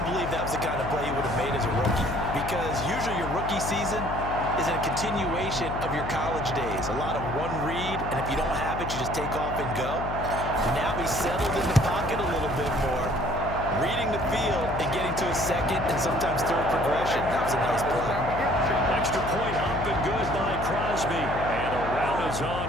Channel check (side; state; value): left; noise; hum, 6 dB below the sound